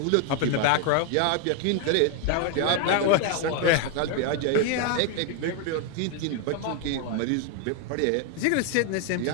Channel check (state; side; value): different; both; correlation 0.01